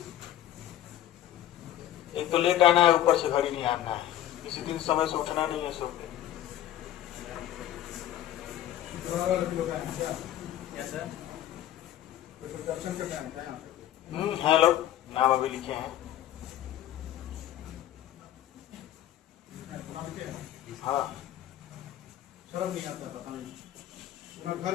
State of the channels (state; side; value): quieter; right; 12.4 dB